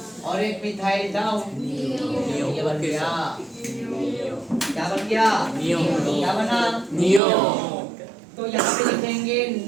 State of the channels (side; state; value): left; drops out; at 7.2 s